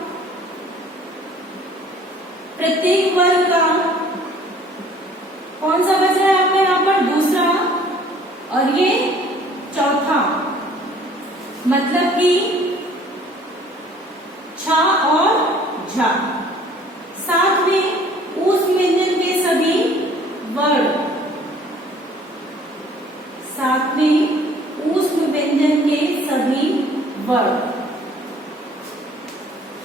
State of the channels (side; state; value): both; normal; correlation 0.55